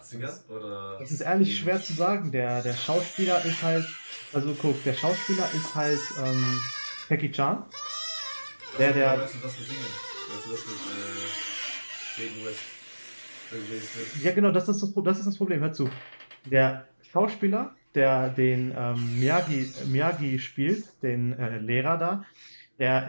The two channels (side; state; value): both; inverted; correlation -1.00